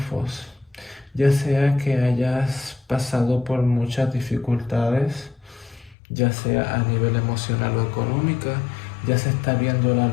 ya sea que hayas pasado por muchas dificultades, ya sea a nivel emocional o económica, ya se está viendo la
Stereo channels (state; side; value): drops out; right; at 6.0 s